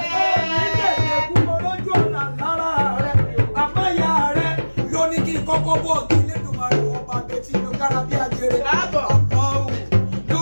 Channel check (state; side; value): inverted; both; correlation -1.00